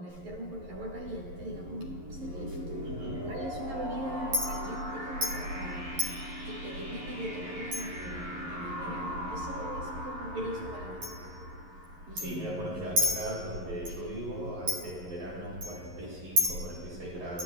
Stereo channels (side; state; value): left; late; 11 ms